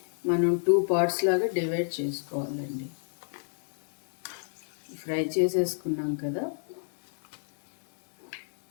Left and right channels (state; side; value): silent; right; 58 dB below the other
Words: మనం 2 పార్ట్స్ లాగా డివైడ్ చేసుకోవాలండి. ఫ్రై చేసేసుకున్నాం కదా,